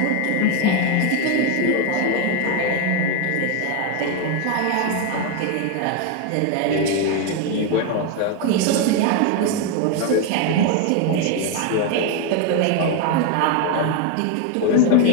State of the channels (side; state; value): both; different; correlation 0.01